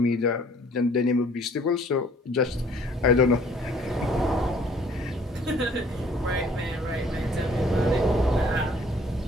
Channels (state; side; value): normal; both; correlation 0.57